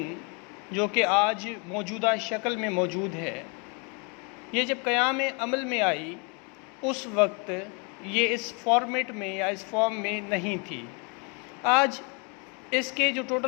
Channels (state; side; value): quieter; right; 34.2 dB